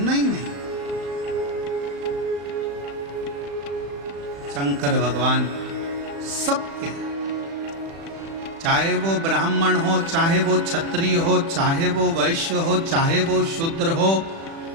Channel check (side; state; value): left; late; 36 ms